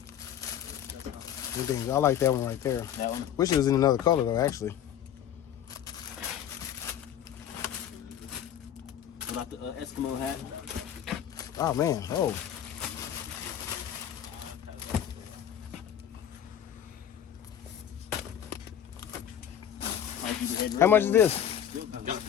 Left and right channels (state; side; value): quieter; right; 9.9 dB